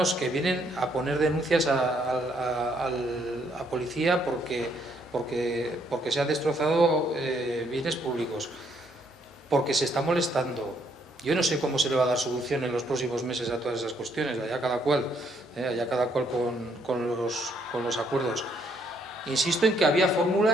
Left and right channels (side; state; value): both; normal; correlation 0.70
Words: que vienen a poner denuncias a policía porque se han destrozado bienes públicos, porque se está molestando. Yo no sé cómo se le va a dar solución en los próximos meses a todas esas cuestiones, allá cada cual con los acuerdos. Insisto en que había